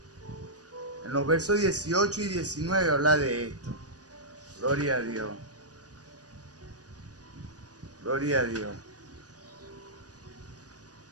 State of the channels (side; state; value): left; late; 0.68 ms